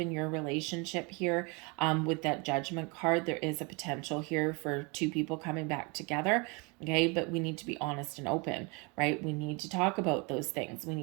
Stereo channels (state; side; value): quieter; left; 30.0 dB